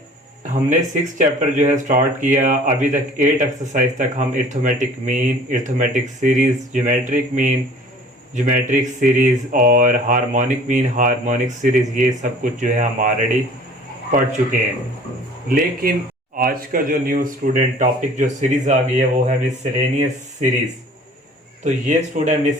हमने 6 चैप्टर जो है स्टार्ट किया, अभी तक 8 एक्सरसाइज तक हम arithmetic mean, arithmetic series, geometric mean, geometric series और हार्मोनिक मीन, हार्मोनिक सीरीज, ये सब कुछ जो है हम ऑलरेडी पढ़ चुके हैं। लेकिन आज का जो न्यू स्टूडेंट टॉपिक जो सीरीज आ गई है वो है मिसलेनियस सीरीज। तो ये स्टूडेंट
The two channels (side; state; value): both; normal; correlation 0.49